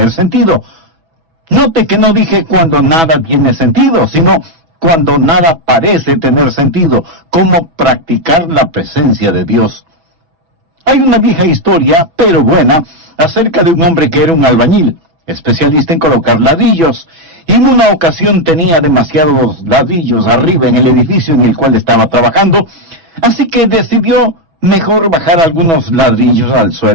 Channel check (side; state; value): left; late; 6.1 ms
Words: sentido. Note que no dije cuando nada tiene sentido, sino cuando nada parece tener sentido. Cómo practicar la presencia de Dios. Hay una vieja historia, pero buena, acerca de un hombre que era un albañil, especialista en colocar ladrillos, y en una ocasión tenía demasiados ladrillos arriba en el edificio en el cual estaba trabajando, así que decidió mejor bajar algunos ladrillos al